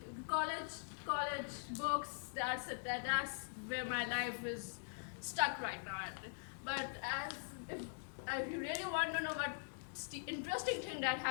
college books, that's it. That's where my life is stuck right now. But if you really want to know what's the interesting thing that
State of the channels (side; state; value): right; silent; digital silence